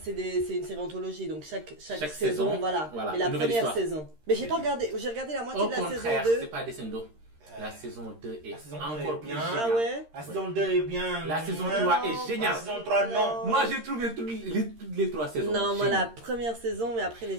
une série anthologie, donc chaque Chaque saison, saison, voilà. voilà, Mais la une nouvelle première histoire. saison. Mais j'ai regardé la moitié Au de la saison contraire, 2. c'est pas descendo. La saison 2 est La saison encore 2 plus est bien. géniale. Ah ouais? La saison 2 est bien. La saison Non, 3 est géniale. La saison 3, non. Moi, j'ai trouvé toutes les 3 saisons. Non, moi la géniales. première saison, mais après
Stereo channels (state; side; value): late; left; 13 ms